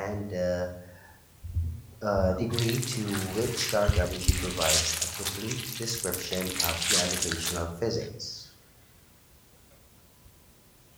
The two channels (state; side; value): identical; both; correlation 1.00